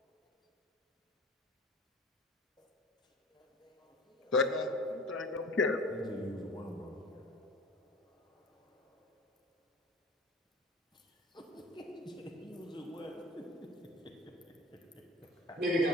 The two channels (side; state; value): both; normal; correlation 0.40